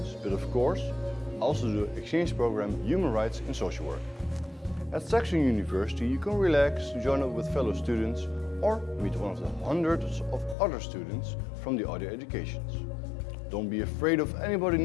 but of course also the exchange program Human Rights in Social Work. At Saxion University you can relax, join up with fellow students or meet one of the hundreds of other students from the other educations. Don't be afraid of anybody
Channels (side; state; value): right; drops out; at 10.6 s